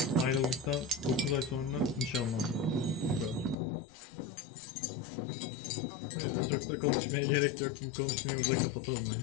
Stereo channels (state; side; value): drops out; right; at 3.6 s